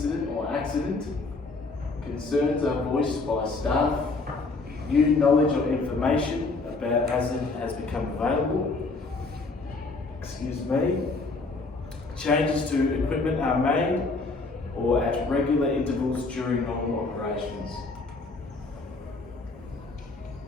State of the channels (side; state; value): right; quieter; 3.7 dB